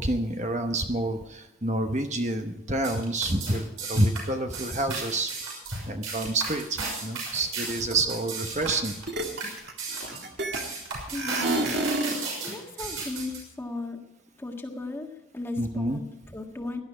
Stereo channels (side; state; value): both; normal; correlation 0.44